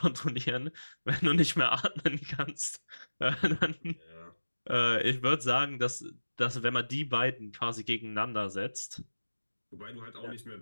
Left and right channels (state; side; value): inverted; both; correlation -1.00